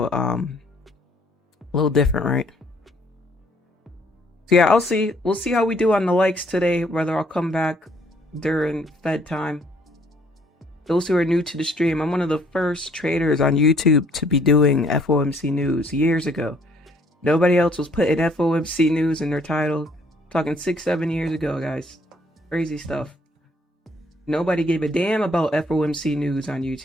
a little different, right? So yeah, we'll see how we do on the likes today, whether I'll come back during Fed time. Those who are new to the stream, I'm one of the first traders on YouTube to be doing FOMC news years ago. Nobody else was putting FOMC news in their title. I'm talking 6-7 years ago, guys. Crazy stuff. Nobody gave a damn about FOMC news on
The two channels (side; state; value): both; normal; correlation 0.63